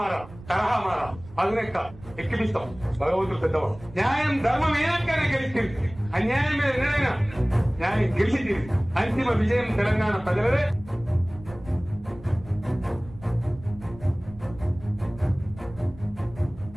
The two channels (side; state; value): right; noise; rumble, 18 dB below the sound